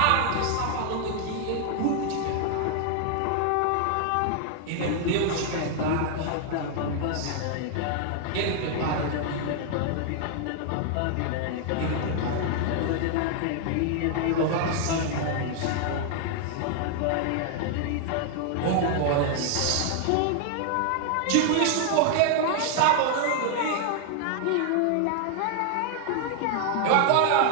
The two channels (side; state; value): both; different; correlation 0.00